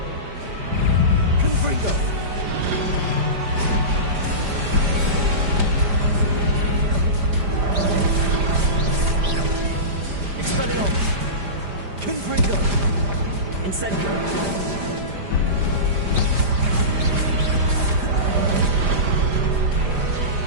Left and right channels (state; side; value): late; left; 5.0 ms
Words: Confringo. Expelliarmus. Confringo. Incendio.